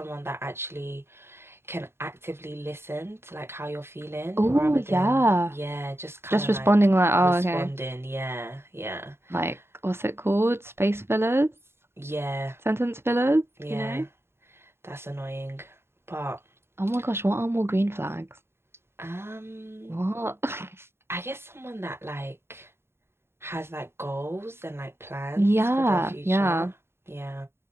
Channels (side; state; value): left; late; 0.12 ms